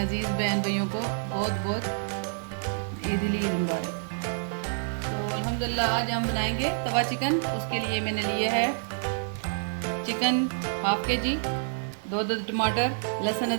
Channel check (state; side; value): silent; left; 59 dB below the other